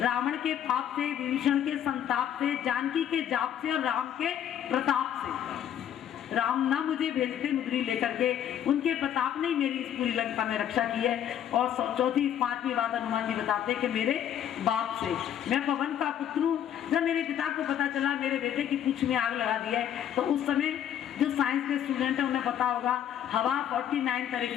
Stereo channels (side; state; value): right; quieter; 10.1 dB